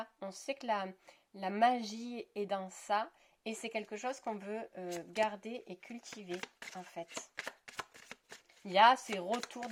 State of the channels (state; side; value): identical; both; correlation 1.00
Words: on sait que la magie est dans ça et c'est quelque chose qu'on veut garder et cultiver en fait. Il y a ces retours